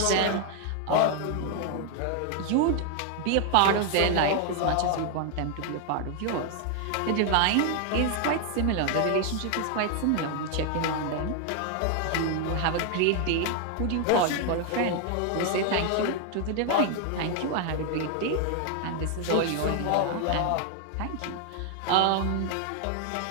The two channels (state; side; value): different; both; correlation 0.00